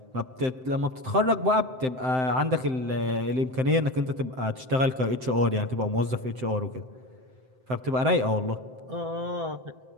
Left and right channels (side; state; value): left; late; 7.8 ms